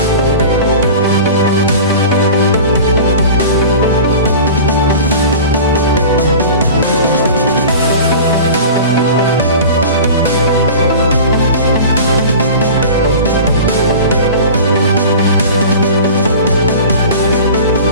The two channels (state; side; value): inverted; both; correlation -0.37